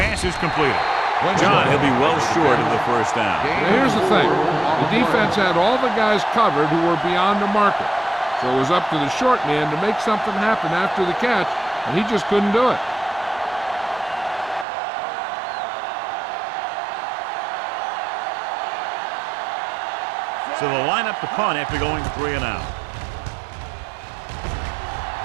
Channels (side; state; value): left; drops out; at 14.7 s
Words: is completed. John, he'll be well short of the first down. Now, here's the thing. The defense had all the guys covered who were beyond the marker. So it was up to the short man to make something happen after the catch, and he just couldn't do it. So they'll line up to punt after going 3 and out.